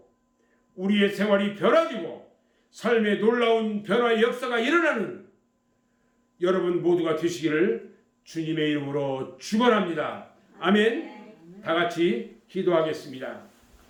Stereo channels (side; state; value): both; identical; correlation 1.00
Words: 우리의 생활이 변화되고 삶의 놀라운 변화의 역사가 일어나는 여러분 모두가 되시기를 주님의 이름으로 축원합니다. 아멘. 다 같이 기도하겠습니다.